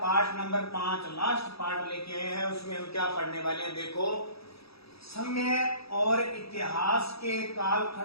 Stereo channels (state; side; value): late; right; 0.77 ms